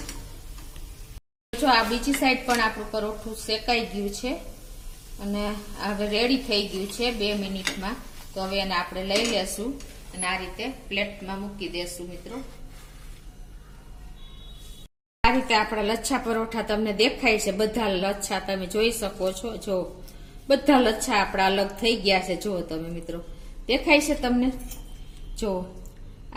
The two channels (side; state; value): both; identical; correlation 1.00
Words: જો આ બીજી સાઈડ પણ આપણું પરોઠું શેકાઈ ગયું છે અને હવે રેડી થઈ ગયું છે 2 મિનિટમાં. તો હવે એને આપણે લઈ લેશું અને આ રીતે પ્લેટમાં મૂકી દેશું મિત્રો. આ રીતે આપણા લચ્છા પરોઠા તમને દેખાય છે. બધા લચ્છા તમે જોઈ શકો છો. જો બધા લચ્છા આપણા અલગ થઈ ગયા છે. જો તમે મિત્રો દેખાય છે તમને. જો